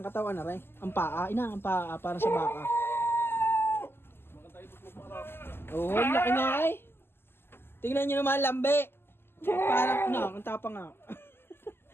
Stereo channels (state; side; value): late; right; 0.11 ms